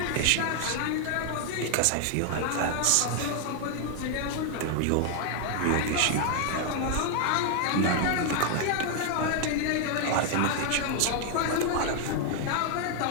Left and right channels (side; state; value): both; different; correlation 0.00